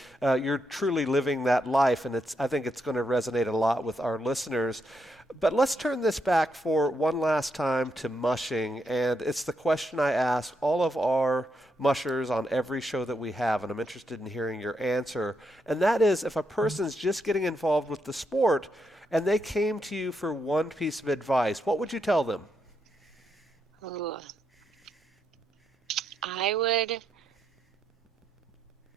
You're truly living that life, and I think it's going to resonate a lot with our listeners. But let's turn this back for one last time to mushing, and it's the question I ask all of our mushers on every show that we have, and I'm interested in hearing your answer. And that is, if a person's just getting involved with the sport and they came to you for one piece of advice, what would you tell them? Ooh. I would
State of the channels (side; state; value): both; normal; correlation 0.80